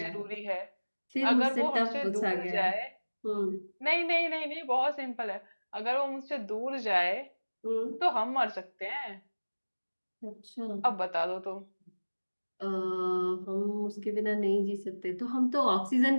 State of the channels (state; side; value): inverted; both; correlation -1.00